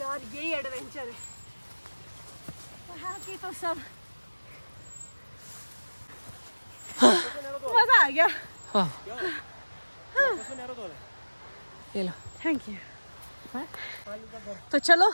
यही एडवेंचर है। वहाँ की तो सब मजा आ गया। ये लो। Thank you. तो चलो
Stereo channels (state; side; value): inverted; both; correlation -1.00